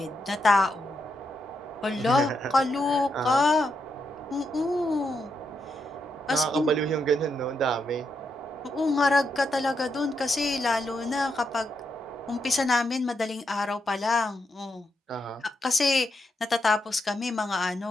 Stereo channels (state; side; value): normal; both; correlation 0.82